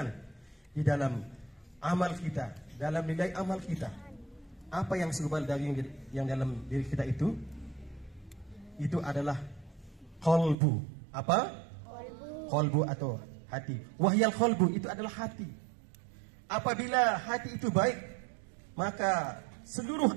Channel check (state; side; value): drops out; left; at 10.6 s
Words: di dalam amal kita, dalam nilai amal kita. Apa yang segumpal daging yang dalam diri kita itu adalah qalbu. Apa? Qalbu atau hati. Wahyal qalbu itu adalah hati. Apabila hati itu baik, maka seluruh